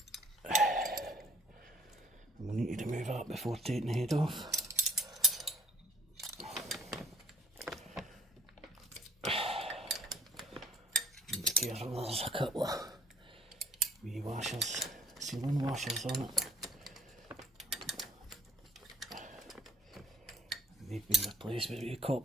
We'll need to remove that before taking the head off. And be careful, there's a couple of wee washers, sealing washers on it. They've been replaced with wee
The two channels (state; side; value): normal; both; correlation 0.55